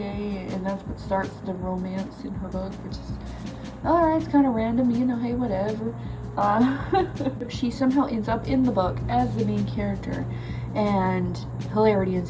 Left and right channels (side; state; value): both; identical; correlation 1.00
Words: and that's what starts the romance in her book, which is alright, it's kind of random, you know, hey, whatever. She somehow ends up in the book as the main character, and hilarity